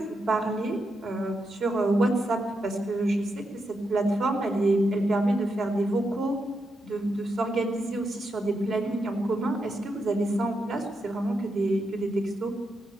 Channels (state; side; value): normal; both; correlation 0.84